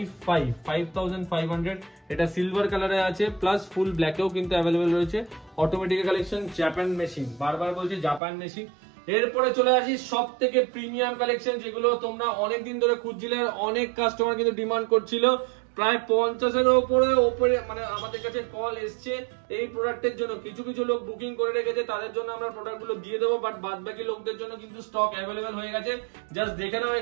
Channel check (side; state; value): left; drops out; at 8.2 s